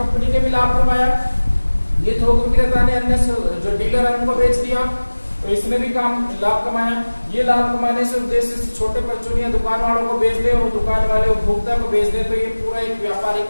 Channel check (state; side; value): inverted; both; correlation -1.00